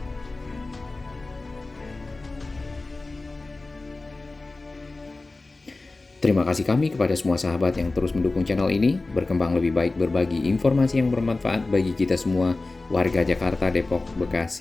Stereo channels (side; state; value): right; quieter; 3.3 dB